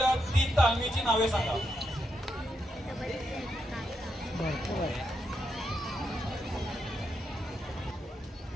3 तालमीची नावे सांगा.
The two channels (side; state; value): both; normal; correlation 0.83